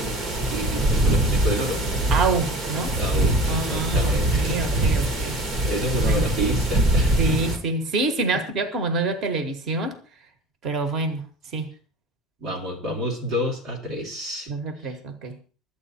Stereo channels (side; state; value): both; normal; correlation 0.37